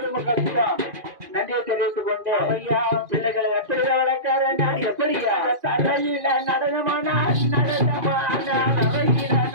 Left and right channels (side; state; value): left; late; 2.5 ms